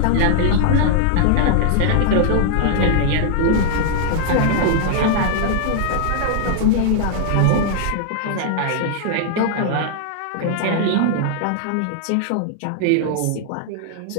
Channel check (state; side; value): different; both; correlation -0.01